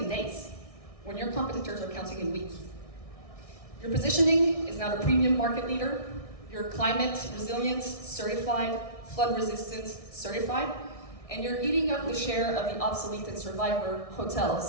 days, when your competitors are counting in weeks. Your positioning is now a premium market leader. You're climate resilient, certified, flood resistant, certified, and you're eating up the share of the obsolete and survivor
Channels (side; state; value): right; late; 1.6 ms